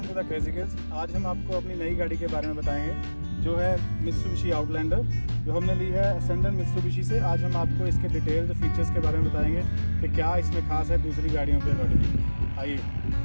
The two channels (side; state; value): both; inverted; correlation -1.00